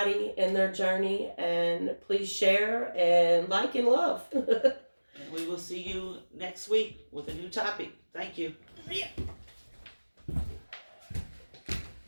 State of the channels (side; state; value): both; inverted; correlation -1.00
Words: in their journey, and please share and like and love. And we will see you next week with a new topic. Thank you.